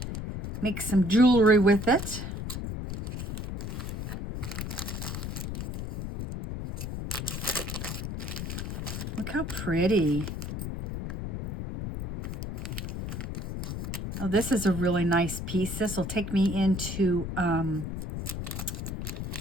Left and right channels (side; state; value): left; noise; rumble, 5 dB below the sound